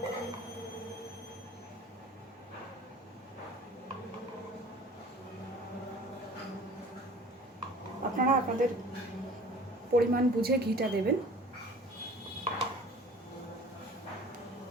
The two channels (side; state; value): both; normal; correlation 0.46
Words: আপনারা আপনাদের পরিমাণ বুঝে ঘিটা দেবেন।